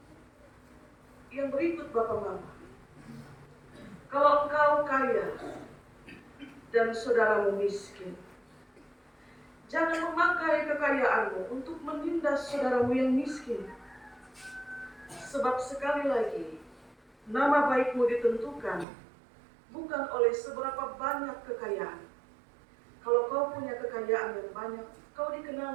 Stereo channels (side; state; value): left; drops out; at 18.9 s